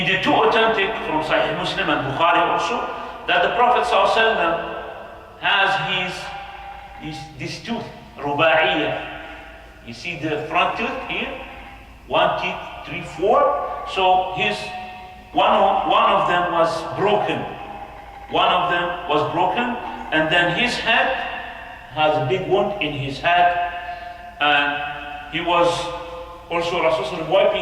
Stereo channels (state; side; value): identical; both; correlation 1.00